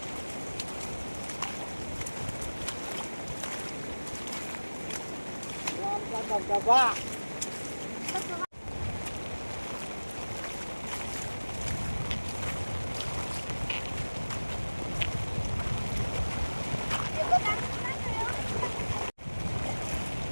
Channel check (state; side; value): inverted; both; correlation -1.00